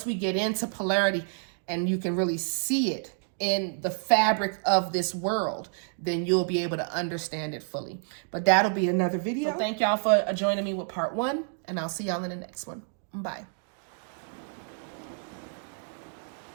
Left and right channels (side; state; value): left; silent; 59 dB below the other